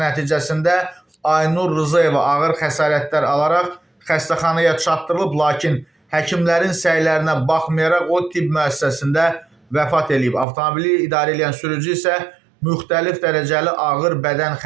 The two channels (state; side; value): drops out; left; at 10.5 s